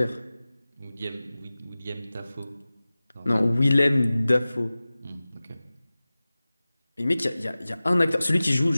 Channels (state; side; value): inverted; both; correlation -0.98